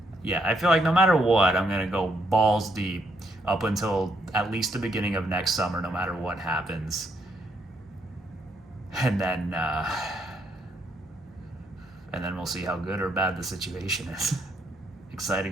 no matter what, I'm going to go balls deep up until at least the beginning of next summer, no matter what happens. And then we'll see how good or bad the situation is.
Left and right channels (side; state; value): both; normal; correlation 0.74